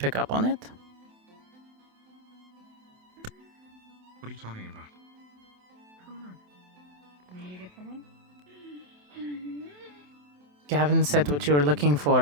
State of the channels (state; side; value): late; left; 27 ms